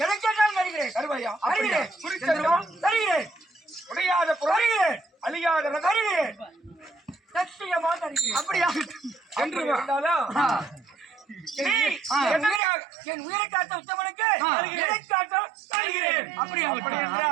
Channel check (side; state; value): left; drops out; at 12.6 s